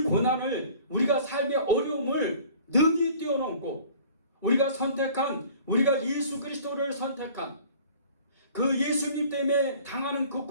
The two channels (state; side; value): inverted; both; correlation -0.49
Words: 고난을, 우리가 삶의 어려움을 능히 뛰어넘고 우리가 예수 그리스도를 선택한 그 예수님 때문에 당하는 그